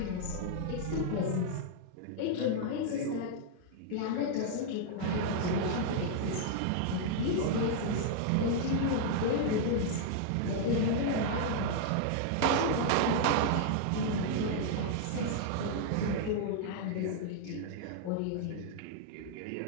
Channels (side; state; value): both; different; correlation -0.01